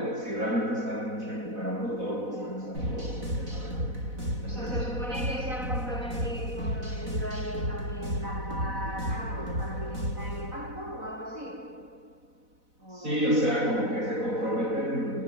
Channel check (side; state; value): left; late; 4.0 ms